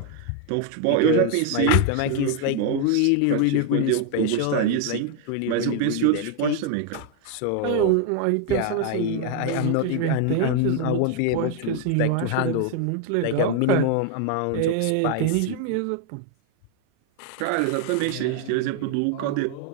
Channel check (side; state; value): both; different; correlation 0.01